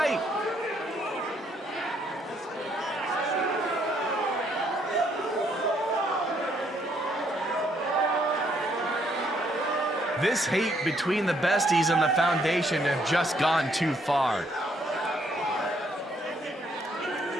This hate between the besties and the Foundation have just gone too far.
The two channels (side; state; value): both; normal; correlation 0.70